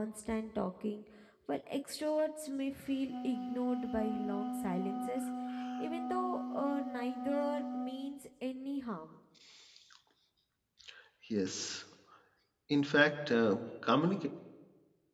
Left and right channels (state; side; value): identical; both; correlation 1.00